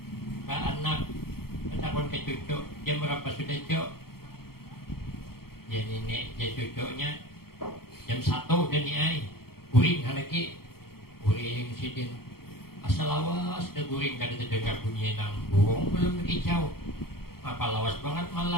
ke anak, bertakut ke cucu. Jam berapa sudah cuk? Ya nenek, ya cucunya jam 1 dan niai guring lagi, guring sidin asal lawas dah guring, kada terdengar bunyi nang burung belum berkicau. Apa lawas banget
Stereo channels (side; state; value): right; late; 0.94 ms